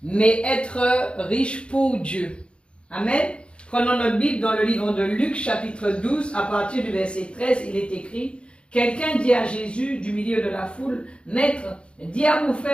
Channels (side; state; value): right; late; 0.057 ms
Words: mais être riche pour Dieu. Amen. Prenons notre Bible dans le livre de Luc, chapitre 12, à partir du verset 13, il est écrit « Quelqu'un dit à Jésus du milieu de la foule, « Maître, dis à mon